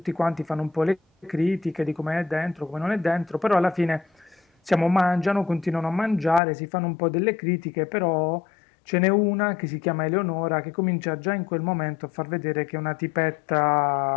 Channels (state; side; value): drops out; right; at 6.4 s